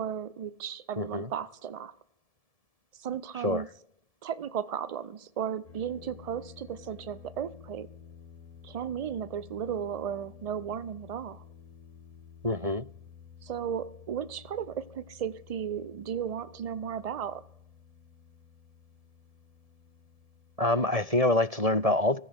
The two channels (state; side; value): late; left; 1.7 ms